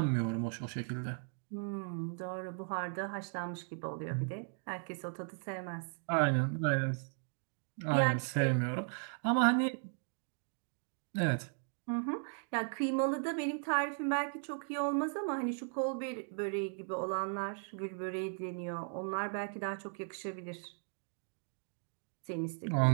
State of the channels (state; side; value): silent; left; 53 dB below the other